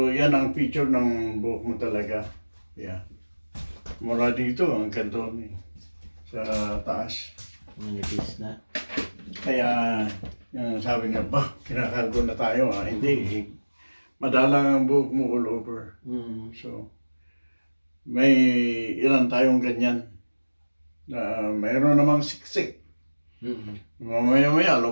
yan ang feature ng buhok mo talaga. Yeah. Mula dito hanggang doon eh, sa taas. Manipis na. Kaya, yung sabi niya, ba, kinakalbo na tayo ha? Hindi eh. Madalang ang buhok mo all over. Mhm. So, may ilan tayong ganyan. Na mayroon namang siksik. Mhm. Mamaya-maya,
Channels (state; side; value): inverted; both; correlation -1.00